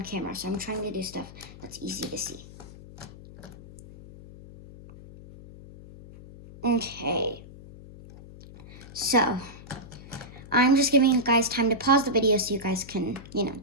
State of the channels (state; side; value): noise; left; hum, 17 dB below the sound